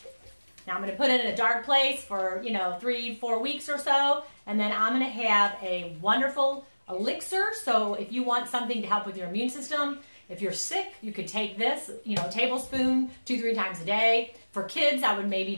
Now I'm going to put it in a dark place for, 3-4 weeks or so. And then I'm going to have a wonderful elixir. So if you want something to help with your immune system, if you're sick, you could take this, a tablespoon 2-3 times a day. For kids, I would maybe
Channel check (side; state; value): both; inverted; correlation -1.00